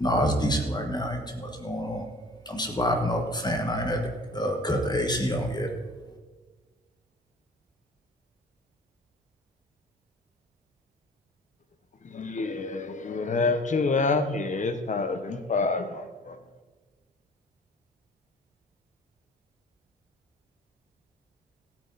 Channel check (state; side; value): normal; both; correlation 0.47